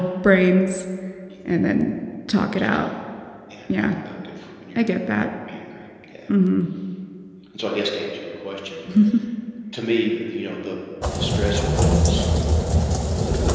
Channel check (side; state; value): both; identical; correlation 1.00